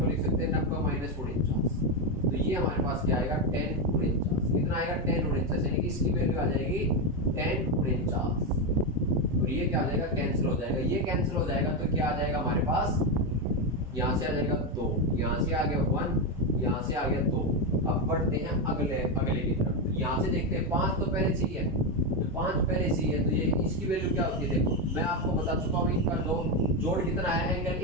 लिख सकते हैं 90 माइनस 49। तो ये हमारे पास क्या आएगा, tan 49। कितना आएगा, tan 49, यानी कि इसकी वैल्यू आ जाएगी tan 49, और ये क्या आ जाएगा, कैंसिल हो जाएगा। ये कैंसिल हो जाएगा तो क्या आ जाएगा हमारे पास, यहाँ से आ जाएगा 2, यहाँ से आ गया 1, यहाँ से आ गया 2। अब बढ़ते हैं अगले की तरफ। यहाँ से देखते हैं 5 तो पहले से ही है, तो 5 पहले से ही है, तो ये इसकी वैल्यू क्या होती है, देखो मैं आपको बता चुका हूँ। इनका जोड़ कितना है, angle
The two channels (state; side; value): normal; both; correlation 0.09